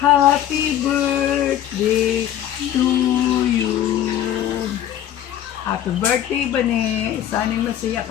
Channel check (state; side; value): quieter; right; 11.2 dB